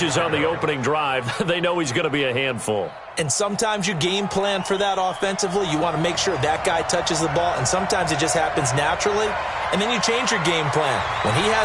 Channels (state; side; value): identical; both; correlation 1.00